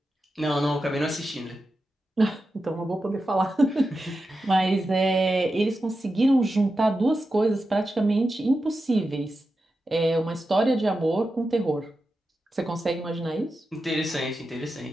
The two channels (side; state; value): both; normal; correlation 0.90